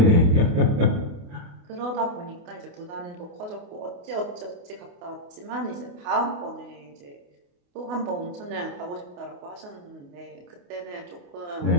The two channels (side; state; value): left; late; 28 ms